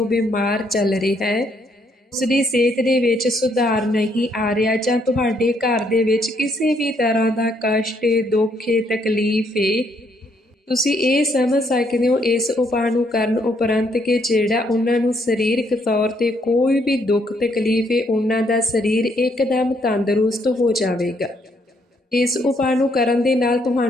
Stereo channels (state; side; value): normal; both; correlation 0.71